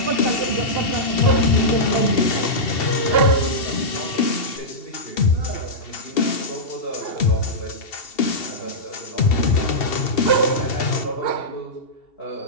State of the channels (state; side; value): late; right; 2.7 ms